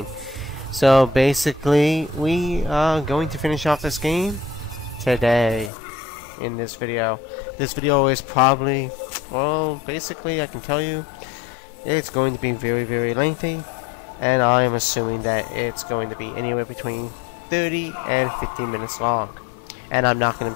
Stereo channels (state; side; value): drops out; right; at 5.7 s